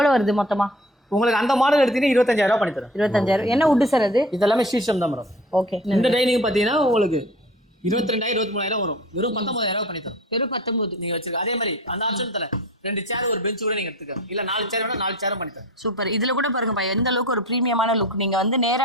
வருது மொத்தமா? உங்களுக்கு அந்த மாடல் எடுத்தீங்கன்னா 25,000 பண்ணி தரேன். 25,000. என்ன வுட் சார் அது? இதெல்லாமே சீசம் தான் மேடம். ஓகே. இந்த டைனிங் பாத்தீங்கன்னா உங்களுக்கு 22,000 23,000 வரும். வெறும் 19,000 பண்ணி தரோம். வெறும் 19 நீங்க வச்சிருக்க. அதே மாதிரி அந்த ஆப்ஷன் தரேன். 2 சேர் ஒரு பெஞ்ச் கூட நீங்க எடுத்துக்க. இல்ல 4 சேர் வேணா 4 சேரும் பண்ணி தரேன். சூப்பர். இதுல கூட பாருங்கப்பா எந்த அளவுக்கு ஒரு பிரீமியமான லுக். நீங்க வந்து நேரா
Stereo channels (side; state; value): both; normal; correlation 0.42